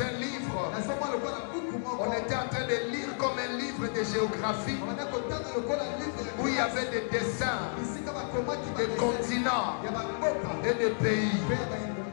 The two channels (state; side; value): silent; right; digital silence